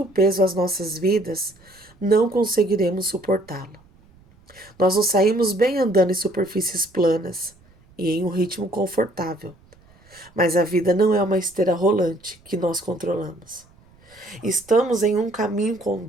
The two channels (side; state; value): right; noise; rumble, 29 dB below the sound